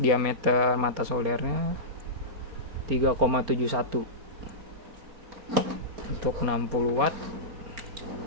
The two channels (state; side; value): late; left; 4.2 ms